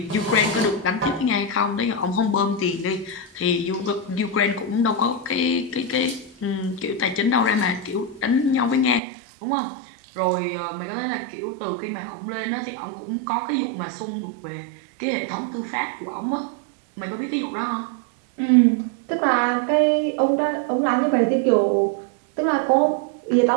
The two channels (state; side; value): drops out; left; at 9.0 s